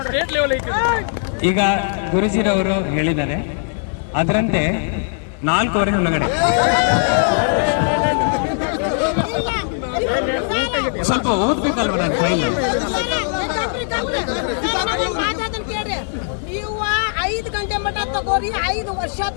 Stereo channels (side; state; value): right; silent; digital silence